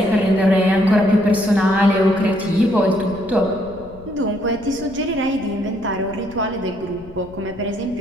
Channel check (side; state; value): left; noise; rumble, 19 dB below the sound